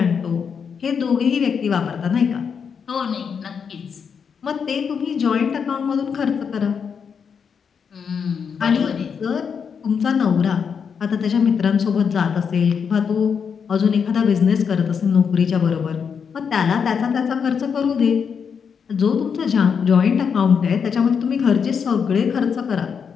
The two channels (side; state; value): right; quieter; 6.6 dB